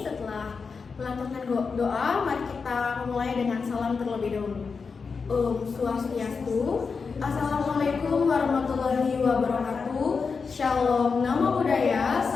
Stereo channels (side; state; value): right; quieter; 5.1 dB